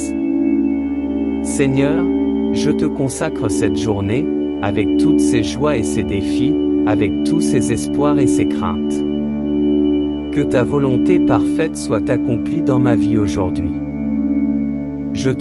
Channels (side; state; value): both; identical; correlation 1.00